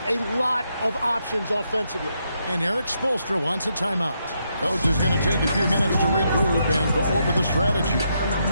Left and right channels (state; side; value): inverted; both; correlation -0.79